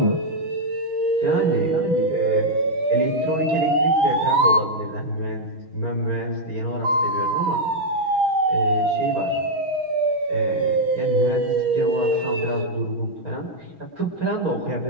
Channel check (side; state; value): left; late; 6.2 ms